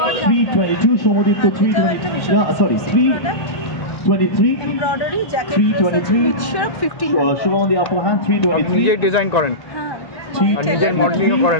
322 Shomodip 320 sorry 323 embroidery jacket 323 with share 15 Shubham on the upper hand 323 নিজে ডিজাইন করেন আর নিজের মডেলিং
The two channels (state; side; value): late; right; 1.1 ms